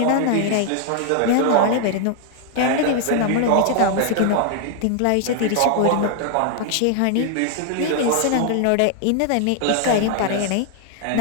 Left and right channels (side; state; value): both; different; correlation 0.00